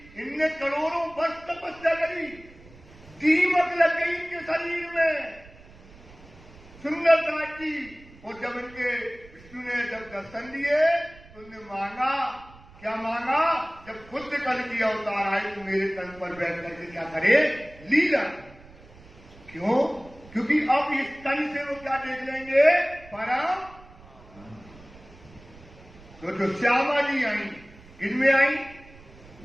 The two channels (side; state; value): right; noise; rumble, 22 dB below the sound